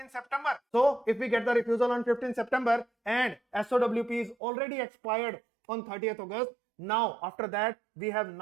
September. So if we get the refusal on 15th September and SOWP is already expired on 30th August, now after that we have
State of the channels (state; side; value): drops out; left; at 4.4 s